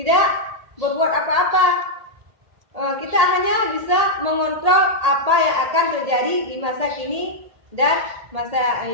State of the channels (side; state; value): left; late; 1.8 ms